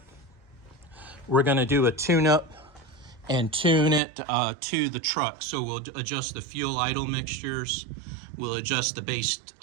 we're going to do a tune-up and tune it to the truck. So we'll adjust the fuel idle mixtures, we'll adjust the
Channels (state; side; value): drops out; left; at 4.0 s